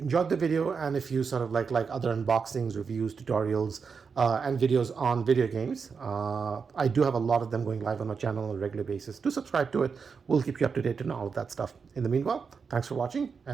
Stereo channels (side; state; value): left; quieter; 5.6 dB